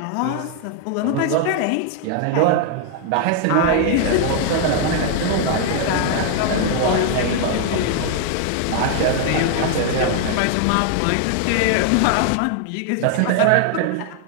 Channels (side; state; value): both; different; correlation 0.00